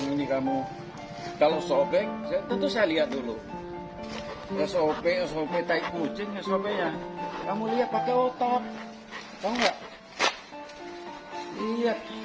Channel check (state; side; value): identical; both; correlation 1.00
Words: ini kamu? Kalau sobek, tentu saya lihat dulu. SOP tai kucing SOP-nya. Kamu lihat pakai otak. Tahu nggak? Lihat,